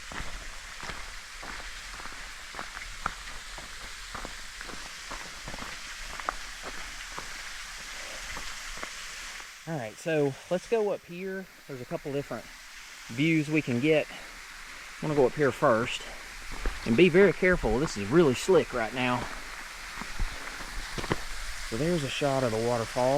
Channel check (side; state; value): both; identical; correlation 1.00